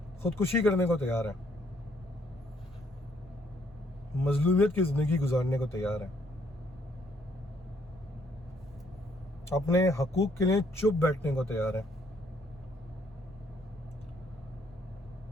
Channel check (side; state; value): both; normal; correlation 0.68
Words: खुदकुशी करने को तैयार हैं, मजलूमियत की ज़िंदगी गुजारने को तैयार हैं, अपने हकूक़ के लिए चुप बैठने को तैयार हैं।